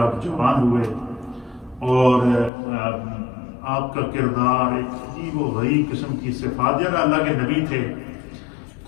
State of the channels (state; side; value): drops out; right; at 2.5 s